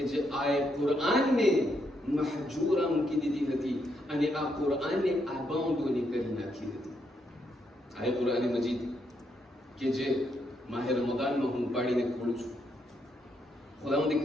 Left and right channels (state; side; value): normal; both; correlation 0.78